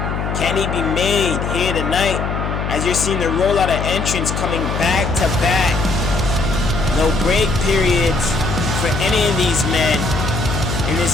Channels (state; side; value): noise; left; hum, 3 dB below the sound